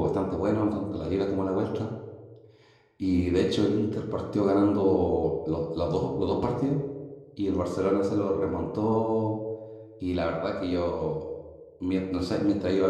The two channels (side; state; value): both; identical; correlation 1.00